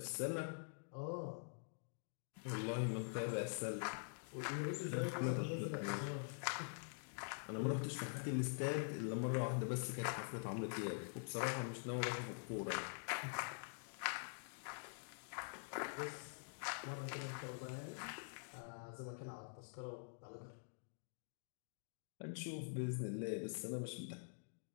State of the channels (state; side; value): silent; right; digital silence